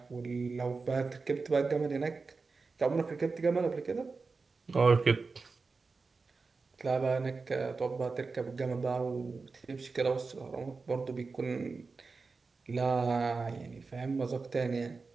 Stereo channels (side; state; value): left; quieter; 4.3 dB